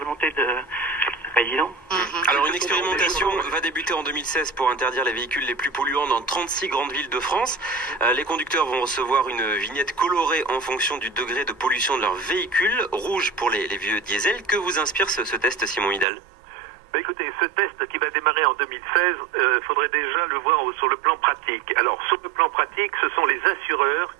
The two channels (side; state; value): left; drops out; at 16.1 s